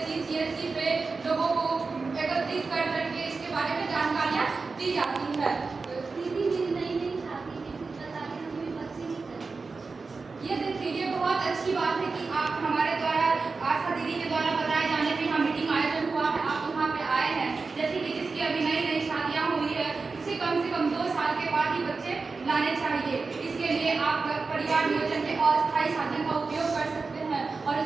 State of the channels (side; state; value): left; quieter; 4.2 dB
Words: CHC पे लोगों को एकत्रित कर करके इसके बारे में जानकारियां दी जाती है। ये देखिए, ये बहुत अच्छी बात है कि आप हमारे द्वारा, आशा दीदी के द्वारा बताए जाने पे यहाँ मीटिंग आयोजन हुआ है, आप यहाँ पे आए हैं। जैसे कि जिसकी अभी नई शादियाँ हुई है, उसे कम से कम 2 साल के बाद ही बच्चे लाने चाहिए। इसके लिए आप परिवार नियोजन के अस्थायी साधन का उपयोग कर सकते हैं और